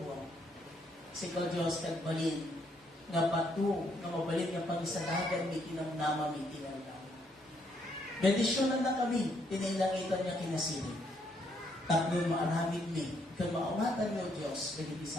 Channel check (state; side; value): normal; both; correlation 0.72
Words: Sikaw Diyos kagbalin nga patu nga mabalin nga pangisadagan mi tinamnama mi tinamnama. Bendisyonan na kami, tinailangitan niya kinasiling. Tapnon maaramid mi, kag maawatan niyo Diyos, dagiti